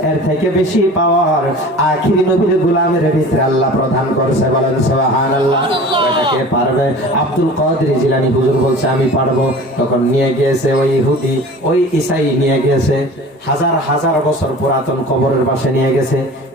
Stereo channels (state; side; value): normal; both; correlation 0.40